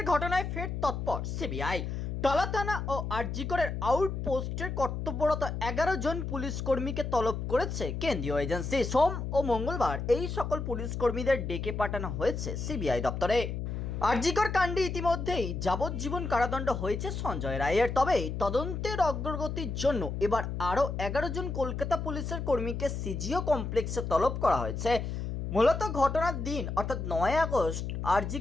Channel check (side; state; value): left; noise; hum, 4 dB below the sound